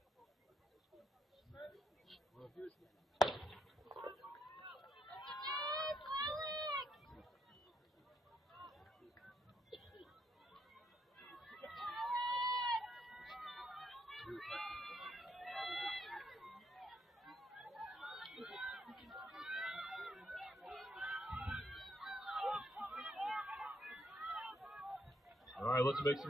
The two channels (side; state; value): both; normal; correlation 0.75